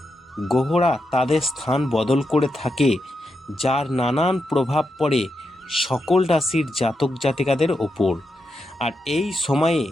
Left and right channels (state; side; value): normal; both; correlation 0.85